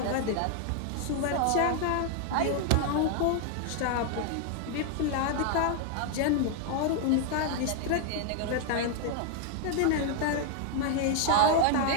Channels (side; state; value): both; different; correlation 0.00